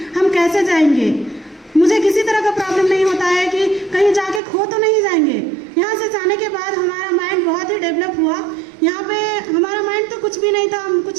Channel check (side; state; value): left; drops out; at 4.4 s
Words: हम कैसे जाएंगे। मुझे किसी तरह का प्रॉब्लम नहीं होता है कि कहीं जाके खो तो नहीं जाएंगे। यहाँ से जाने के बाद हमारा माइंड बहुत ही डेवलप हुआ। यहाँ पे हमारा माइंड तो कुछ भी नहीं था, हम कुछ